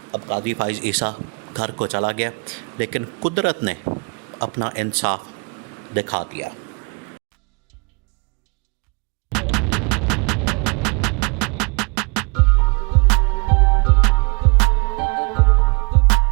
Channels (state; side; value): quieter; left; 31.3 dB